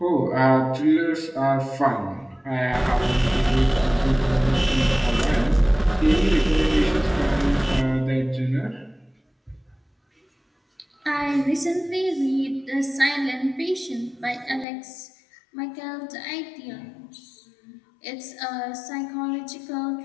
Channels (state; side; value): drops out; right; at 14.7 s